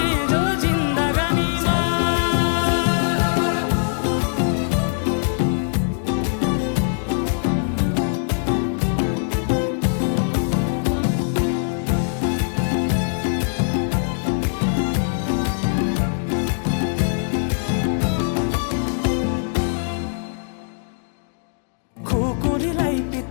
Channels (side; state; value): right; silent; digital silence